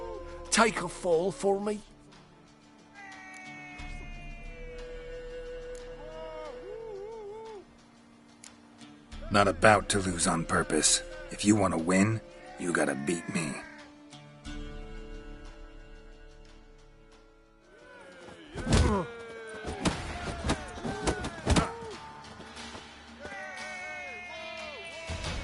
Take a fall for me. Not about to lose on purpose. If you want to win, you gotta beat me.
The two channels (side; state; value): both; identical; correlation 1.00